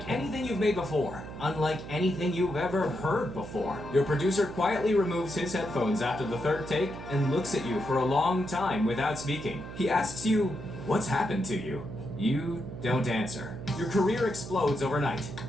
anything you've made before. Unlike anything you've ever heard before. Your producer quietly removes his headphones after the third take and looks at you for a long time without speaking. He asks you, "What's happened to you?" You don't answer. Your career explodes overnight.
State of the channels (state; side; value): noise; right; hum, 11 dB below the sound